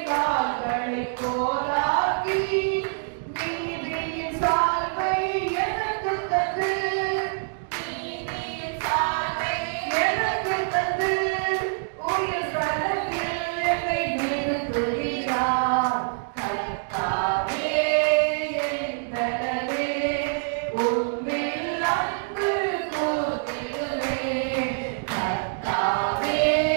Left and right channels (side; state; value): left; silent; digital silence